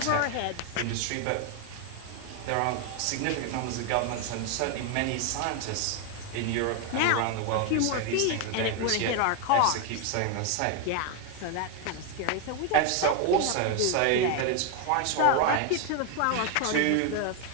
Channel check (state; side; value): different; both; correlation 0.01